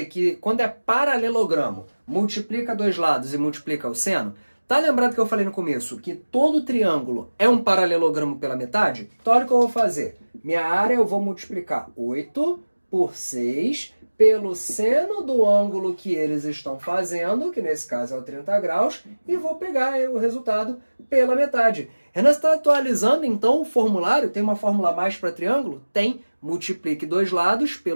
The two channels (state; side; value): inverted; both; correlation -1.00